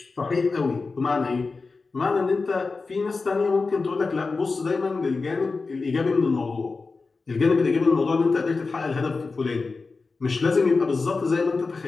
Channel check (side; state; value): right; quieter; 4.1 dB